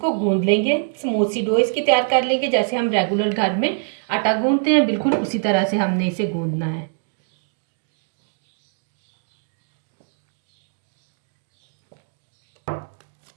गूंद लेंगे। स्मूथ सी डो इसकी तैयार कर लेंगे। जैसे हम रेगुलर घर में आटा गूंदते हैं, बिल्कुल उसी तरह से हमने इसे गूंदना है।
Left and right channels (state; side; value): silent; left; digital silence